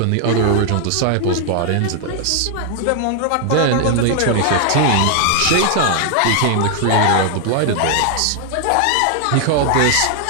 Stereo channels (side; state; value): both; different; correlation 0.00